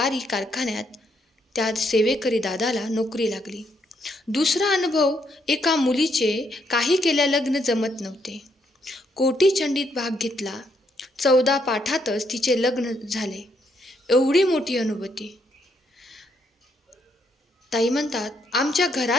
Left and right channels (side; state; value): both; normal; correlation 0.75